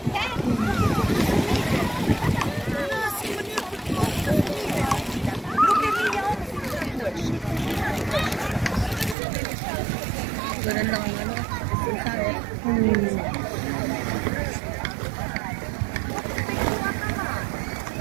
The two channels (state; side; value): drops out; left; at 9.2 s